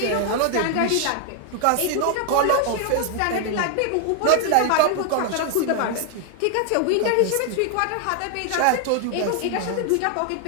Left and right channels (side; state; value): both; different; correlation 0.00